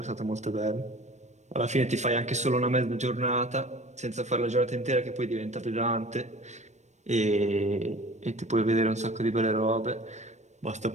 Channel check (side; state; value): left; late; 0.34 ms